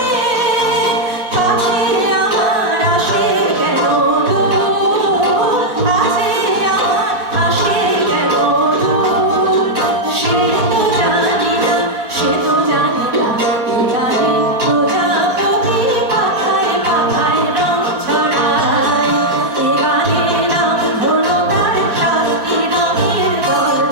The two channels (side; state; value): left; late; 4.0 ms